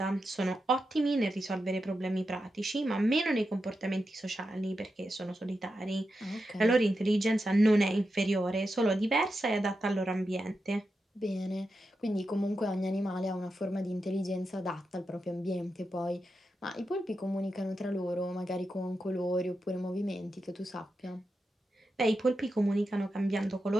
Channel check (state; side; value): normal; both; correlation 0.88